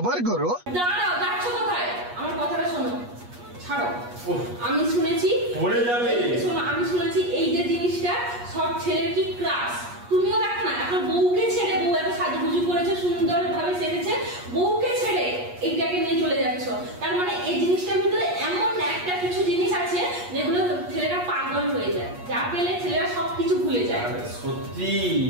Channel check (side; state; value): left; late; 8.4 ms